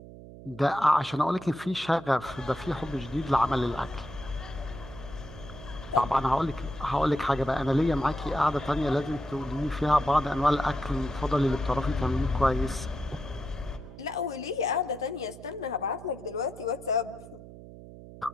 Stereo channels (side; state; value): right; noise; hum, 16 dB below the sound